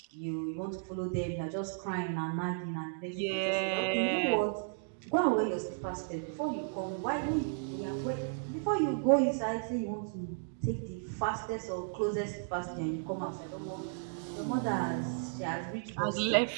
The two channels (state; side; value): silent; left; digital silence